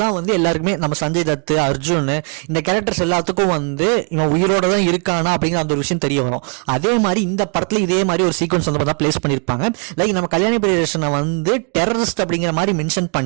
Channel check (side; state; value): left; quieter; 37.0 dB